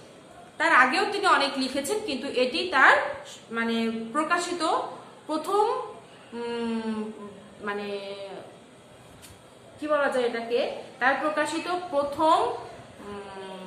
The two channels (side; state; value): both; identical; correlation 1.00